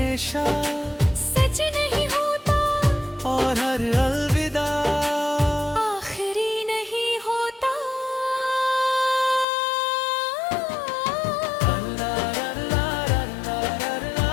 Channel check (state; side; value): drops out; right; at 9.5 s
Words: सच नहीं होता और हर अलविदा आखिरी नहीं होता।